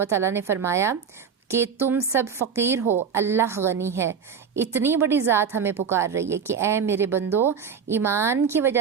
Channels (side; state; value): left; quieter; 6.7 dB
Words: تعالیٰ نے فرمایا کہ تم سب فقیر ہو، اللہ غنی ہے۔ اتنی بڑی ذات ہمیں پکار رہی ہے کہ اے میرے بندو، ایمان کی